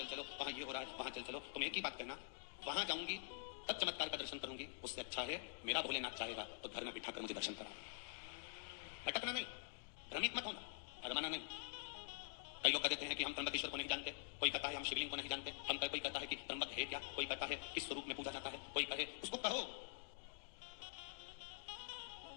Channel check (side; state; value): right; silent; digital silence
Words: चलो, वहां ये हो रहा है, वहां चल चलो। तुम एक ही बात करना, वहां जाऊंगी तब चमत्कार का दर्शन करूंगी, उससे अच्छा है मेरा भोलेनाथ चाहेगा तो घर में बिठाकर मुझे दर्शन करा। भटकना नहीं, भ्रमित मत होना, अरमाना नहीं। कई लोग कहते हैं कि हम त्र्यंबकेश्वर को नहीं जानते, कोई कहता है हम शिवलिंग को नहीं जानते, कोई कहता है कि त्र्यंबक है क्या, कोई कहता है किस स्वरूप में पूजा जाता है, कोई कहे उसको कहो।